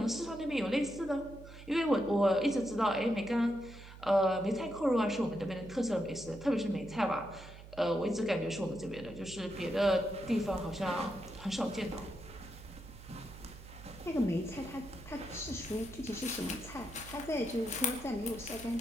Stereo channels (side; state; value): right; noise; hum, 16 dB below the sound